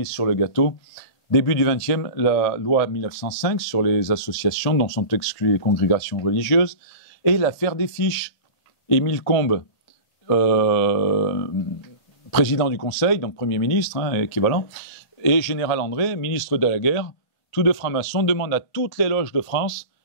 sur le gâteau. Début du XXe, la loi 1905 sur les associations dont sont exclues les congrégations religieuses, et l'affaire des fiches. Émile Combes, président du Conseil, donc Premier ministre, hein, équivalent, et Général André, ministre de la Guerre, tous deux francs-maçons, demandent à toutes les loges de France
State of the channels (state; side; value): late; right; 1.8 ms